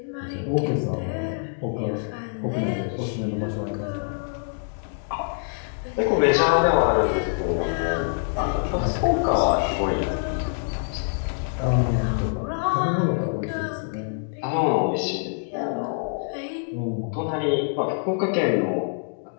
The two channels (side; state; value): right; silent; digital silence